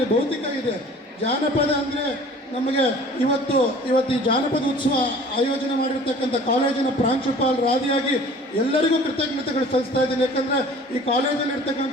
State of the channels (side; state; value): both; normal; correlation 0.47